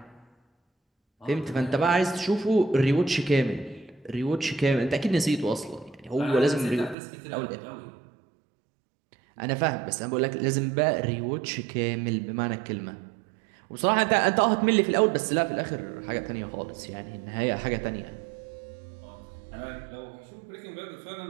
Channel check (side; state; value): left; drops out; at 7.0 s